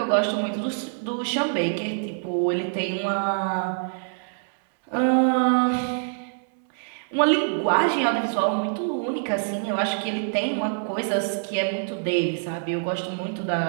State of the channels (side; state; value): left; silent; digital silence